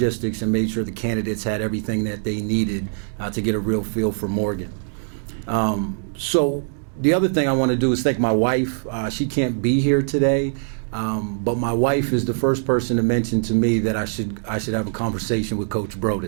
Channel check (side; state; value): left; silent; digital silence